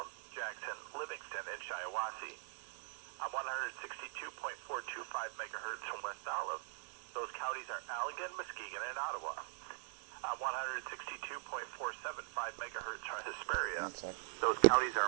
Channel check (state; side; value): silent; left; digital silence